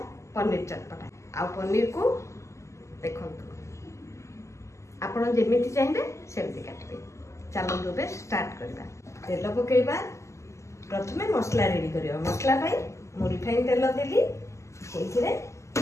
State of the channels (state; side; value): late; right; 0.14 ms